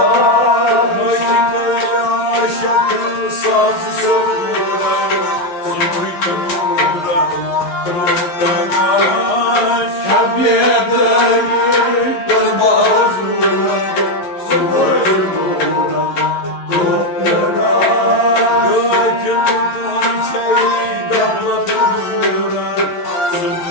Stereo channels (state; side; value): late; right; 11 ms